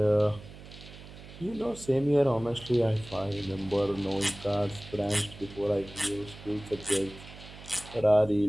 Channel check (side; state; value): right; noise; hum, 17 dB below the sound